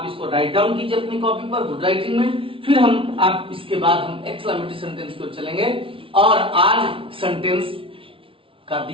इसको राइट डाउन कीजिए अपनी कॉपी पर गुड राइटिंग में, फिर हम आप इसके बाद हम एक्सक्लेमेटरी सेंटेंस की ओर चलेंगे। और आज सेंटेंस का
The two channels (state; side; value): late; left; 0.25 ms